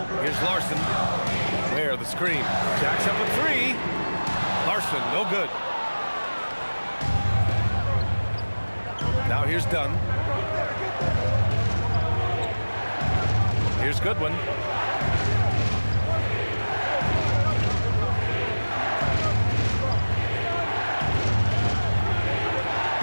Here's Larson. Ware, the screen. Jacks up a 3. Larson, no good. Now here's Dunn. Here's Goodwin.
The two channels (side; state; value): both; inverted; correlation -1.00